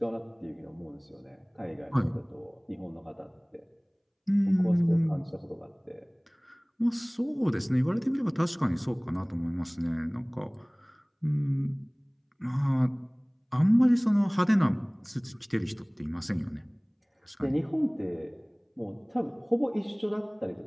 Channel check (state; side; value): identical; both; correlation 1.00